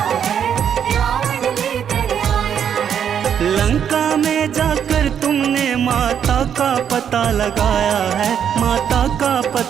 है, रावण लेकर आया है। लंका में जाकर तुमने माता का पता लगाया है, माता का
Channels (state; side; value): quieter; left; 8.5 dB